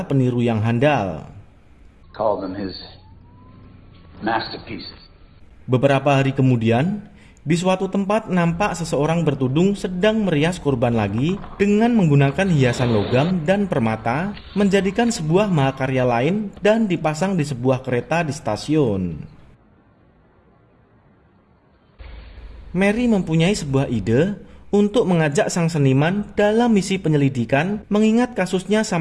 peniru yang handal. Call them his masterpieces. Beberapa hari kemudian, di suatu tempat nampak seseorang bertudung sedang merias korban lagi dengan menggunakan hiasan logam dan permata, menjadikan sebuah mahakarya lain dan dipasang di sebuah kereta di stasiun. Mary mempunyai sebuah ide untuk mengajak sang seniman dalam misi penyelidikan mengingat kasusnya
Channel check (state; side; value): identical; both; correlation 1.00